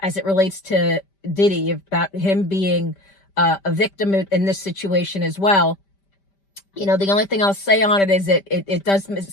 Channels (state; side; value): late; right; 5.1 ms